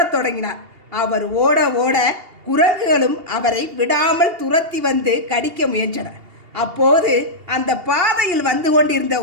தொடங்கினார். அவர் ஓட ஓட குரங்குகளும் அவரை விடாமல் துரத்தி வந்து கடிக்க முயன்றன. அப்போது அந்த பாதையில் வந்து கொண்டிருந்த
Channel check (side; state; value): left; late; 2.8 ms